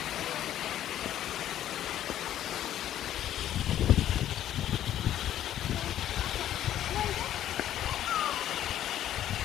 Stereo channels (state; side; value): quieter; right; 11.7 dB